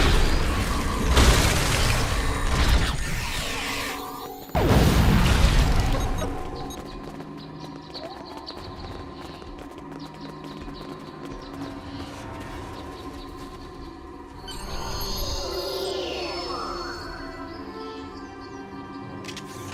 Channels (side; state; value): both; identical; correlation 1.00